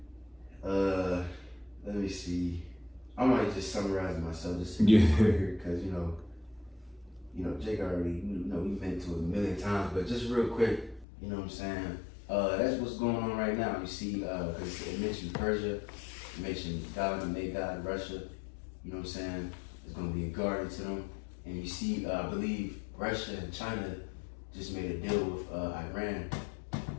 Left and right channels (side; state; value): right; drops out; at 11.1 s